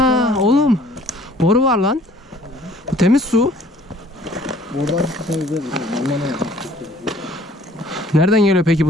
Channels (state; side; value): normal; both; correlation 0.56